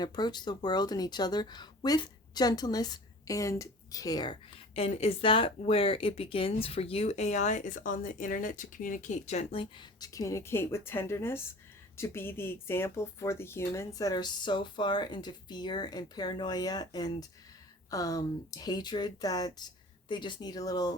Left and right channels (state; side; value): normal; both; correlation 0.43